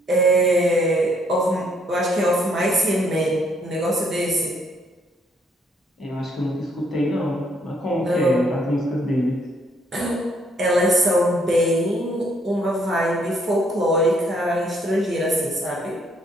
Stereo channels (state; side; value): normal; both; correlation 0.68